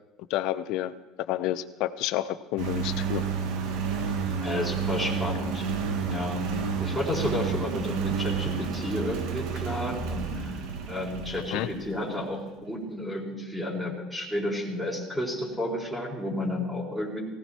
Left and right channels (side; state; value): both; normal; correlation 0.34